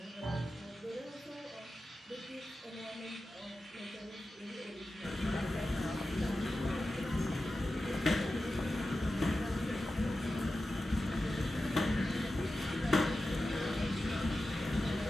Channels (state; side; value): normal; both; correlation 0.93